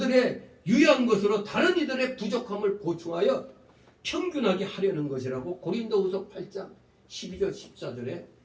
유효한 것으로 다른 이들의 부족함을 보충하여 평균하게 하려는 것이라고 고린도후서 8장 12절 14절에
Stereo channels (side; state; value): both; identical; correlation 1.00